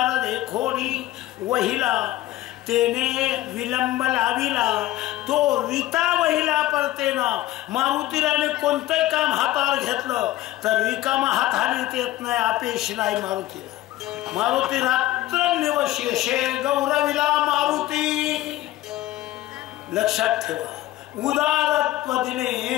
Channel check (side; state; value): right; quieter; 15.6 dB